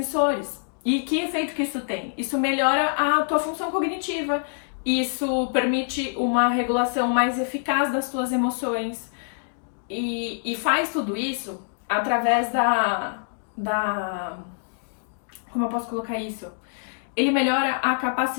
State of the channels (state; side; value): silent; right; digital silence